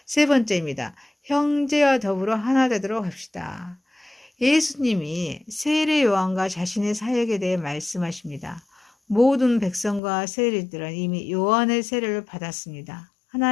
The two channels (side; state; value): right; drops out; at 10.0 s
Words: 세 번째입니다. 형제와 더불어 하나 되도록 합시다. 예수님이 세례 요한과 자신의 사역에 대해 말씀하십니다. 모든 백성과 세리들은 이미 요한의 세례를 받았습니다.